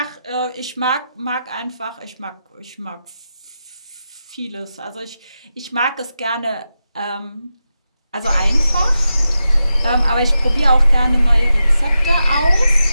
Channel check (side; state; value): both; inverted; correlation -0.89